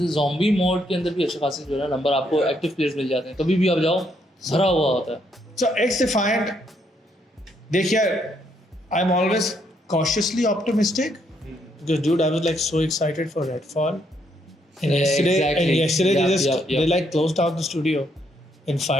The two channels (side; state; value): both; normal; correlation 0.73